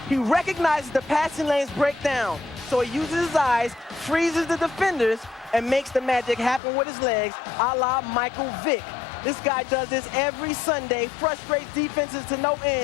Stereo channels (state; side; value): drops out; right; at 6.6 s